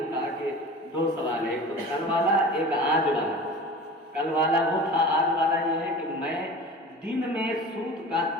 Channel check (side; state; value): both; normal; correlation 0.37